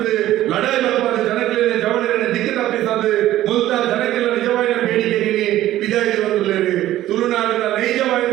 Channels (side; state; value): left; quieter; 14.1 dB